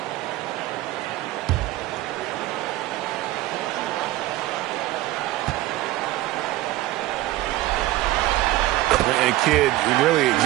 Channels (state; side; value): quieter; left; 16.6 dB